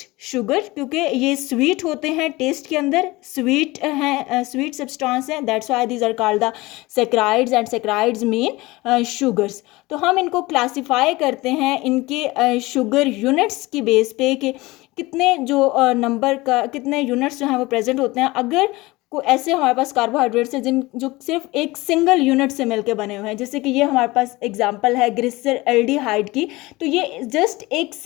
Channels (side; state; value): right; quieter; 21.1 dB